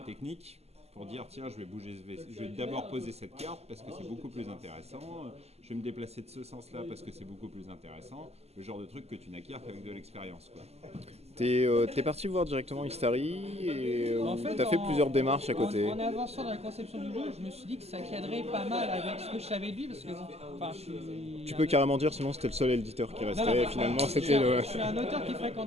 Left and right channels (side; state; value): left; late; 0.30 ms